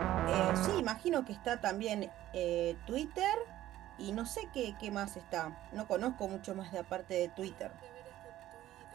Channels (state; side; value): quieter; left; 14.0 dB